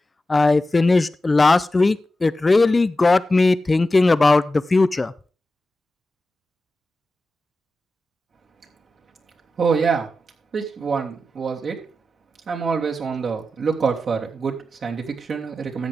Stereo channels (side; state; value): both; normal; correlation 0.93